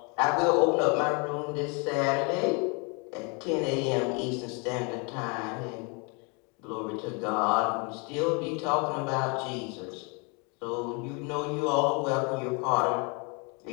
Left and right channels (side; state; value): right; quieter; 32.6 dB